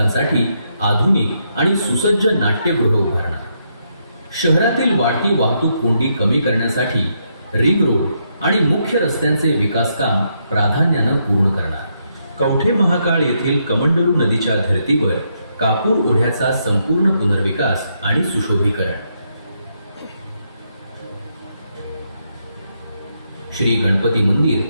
आधुनिक आणि सुसज्ज नाट्यगृह उभारणार. शहरातील वाढती वाहतूक कोंडी कमी करण्यासाठी रिंग रोड आणि मुख्य रस्त्यांचे विकासकाम प्राधान्यानं पूर्ण करणार. कवठे महाकाळ येथील कमंडलू नदीच्या धर्तीवर कापूर ओढ्याचा संपूर्ण पुनर्विकास आणि सुशोभीकरण. श्री गणपती मंदिर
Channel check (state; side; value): inverted; both; correlation -0.78